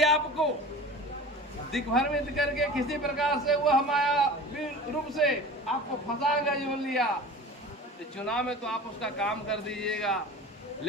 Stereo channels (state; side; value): normal; both; correlation 0.37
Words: आपको दिग्भ्रमित करके किसी प्रकार से वह मायावी रूप से आपको फंसा गया जो लिया, तो चुनाव में तो आप उसका काम कर दीजिएगा,